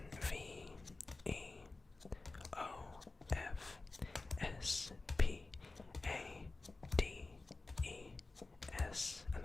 V E O F S P A D E S, and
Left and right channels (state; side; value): quieter; right; 3.4 dB